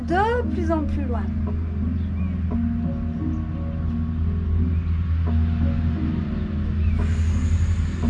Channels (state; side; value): identical; both; correlation 1.00